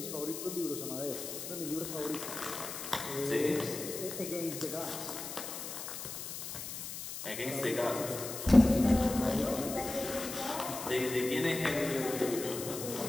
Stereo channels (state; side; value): noise; left; hiss, 7 dB below the sound